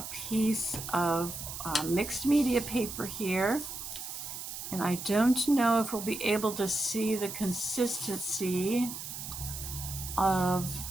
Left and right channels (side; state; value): right; noise; hiss, 8 dB below the sound